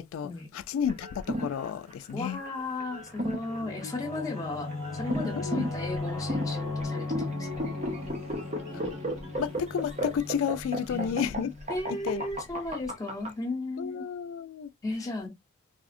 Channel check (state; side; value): quieter; right; 3.2 dB